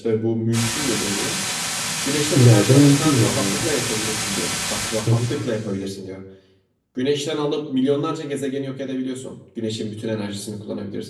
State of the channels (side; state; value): both; identical; correlation 1.00